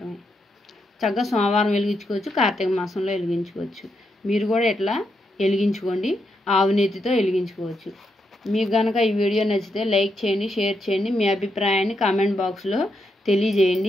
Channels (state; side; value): normal; both; correlation 0.81